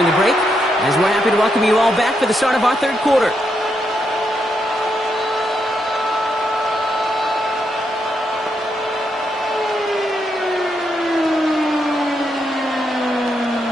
the break, as we're happy to welcome you all back for the start of our 3rd quarter.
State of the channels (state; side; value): normal; both; correlation 0.81